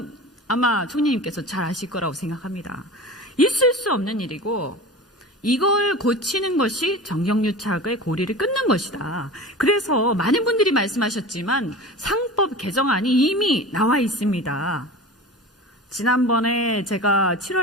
아마 총리님께서 잘 아실 거라고 생각합니다. 있을 수 없는 일이고 이걸 고치는 것이 정경유착의 고리를 끊는 것이다. 그래서 많은 분들이 말씀하셨지만 상법 개정안이 이미 나와 있습니다. 지난번에 제가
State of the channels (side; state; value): both; normal; correlation 0.33